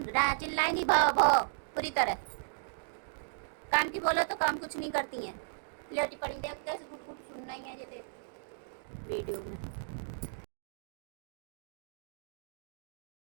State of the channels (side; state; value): left; silent; digital silence